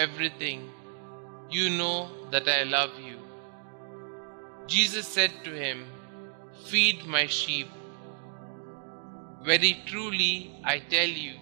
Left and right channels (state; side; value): silent; left; digital silence